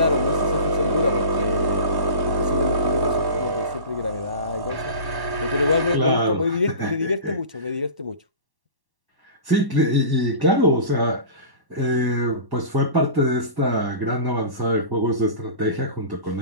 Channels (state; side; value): late; left; 1.1 ms